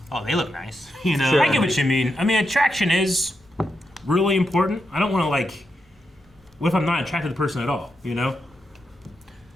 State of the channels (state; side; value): normal; both; correlation 0.85